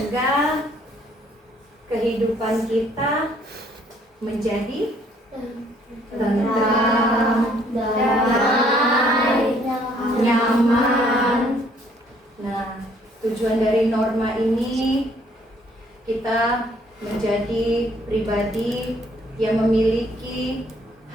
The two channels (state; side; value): normal; both; correlation 0.64